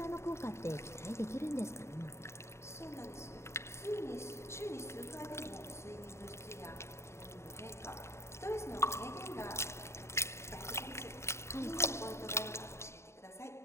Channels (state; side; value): late; right; 0.13 ms